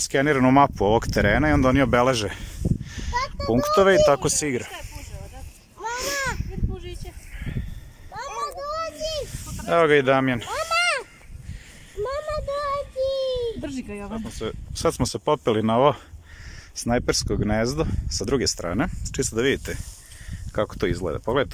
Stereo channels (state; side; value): identical; both; correlation 1.00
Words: mapu ovog terena i onda oni obeleže punktove i tako se igra. Evo ga i Damjan. Sad smo se popeli na ovo snajpersko gnezdo sa druge strane, čisto da vidite kako to izgleda.